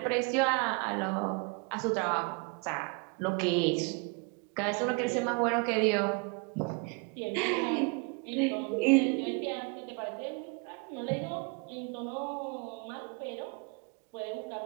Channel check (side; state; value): left; quieter; 33.7 dB